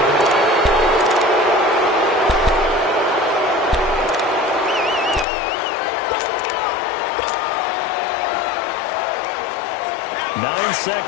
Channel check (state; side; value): drops out; right; at 5.2 s